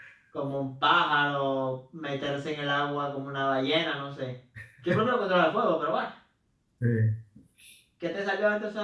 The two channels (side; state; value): both; identical; correlation 1.00